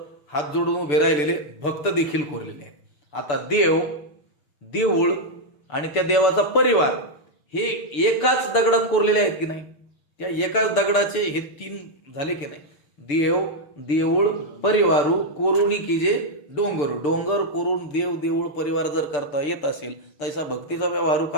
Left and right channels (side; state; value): right; late; 6.8 ms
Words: हात जोडून उभे राहिलेले भक्त देखील कोरलेले आहेत. आता देव, देऊळ आणि त्या देवाचा परिवार हे एकाच दगडात कोरलेले आहेत की नाही? त्या एकाच दगडाचे हे 3 झाले की नाही? देव, देऊळ, परिवारू कोरुणी की जे डोंगर, डोंगर कोरून देव, देऊळ, परिवार जर करता येत असेल तैसा भक्तीचा व्यवहारू